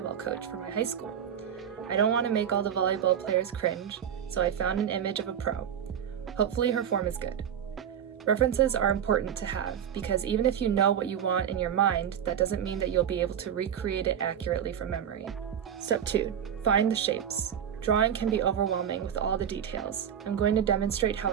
coach for my high school. I don't want to make all the volleyball players cringe, so I found an image of a pro. Hopefully her form is good. References are important to have because even if you know what you want in your mind, that doesn't mean that you'll be able to recreate it accurately from memory. Step 2. Find the shapes. Drawing can be overwhelming with all the details. I'm going to demonstrate how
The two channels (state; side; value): quieter; left; 8.9 dB